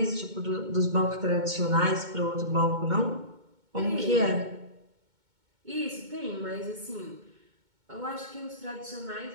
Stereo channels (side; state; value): left; late; 2.2 ms